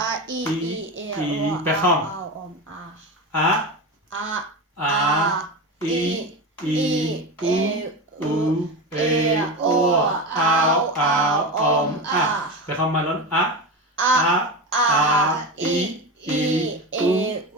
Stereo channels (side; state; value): both; normal; correlation 0.22